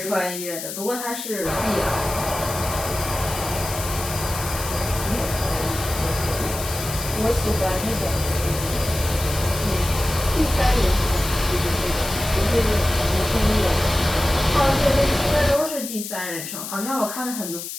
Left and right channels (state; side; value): noise; left; hiss, 8 dB below the sound